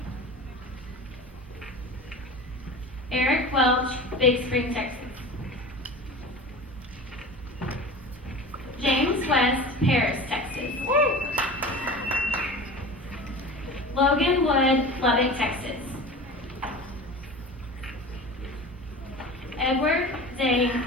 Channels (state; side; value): normal; both; correlation 0.34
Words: Eric Welch, Big Spring, Texas. James West, Paris, Texas. Logan Wood, Lubbock, Texas. Edward Zane,